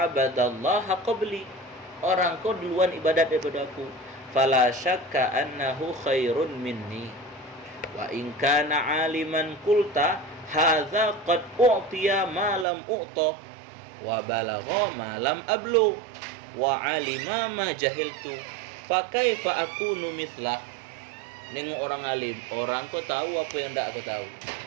qabli. Orang kau duluan ibadat daripada aku. Fala syakka annahu khairun minni. Wa in kana aliman qulta hadza qad u'tiya ma lam u'ta wa balagha ma lam ablu wa alima ma jahiltu fa kaifa akunu mithlah. Nengok orang alim, orang kau tahu apa yang tak aku tahu.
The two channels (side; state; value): left; drops out; at 12.7 s